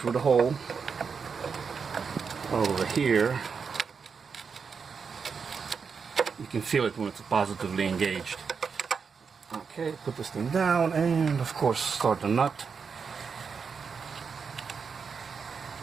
the hole. Over here. You can feel it when it's positively engaged. Okay, put this thing down and of course start the nut.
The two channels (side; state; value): left; quieter; 5.8 dB